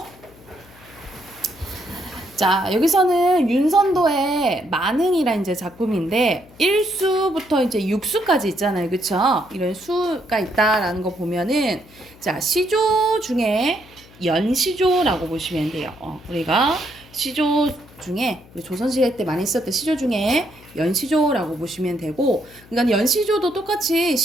자, 여기서는 윤선도의 만흥이라는 이제 작품인데 1수부터 이제 6수까지 있잖아요. 그쵸? 이런 수가 있다라는 거 보면은 자, 시조 중에 연시조라고 보시면 돼요. 우리가 시조 중에 조선시대 때 많이 썼던 시조 중에 연시조라고 보시면 되고, 그러니까 연시조도 똑같이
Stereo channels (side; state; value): left; noise; hum, 24 dB below the sound